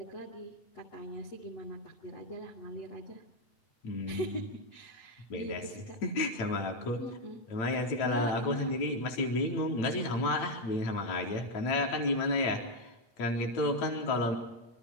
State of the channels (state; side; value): late; right; 9.0 ms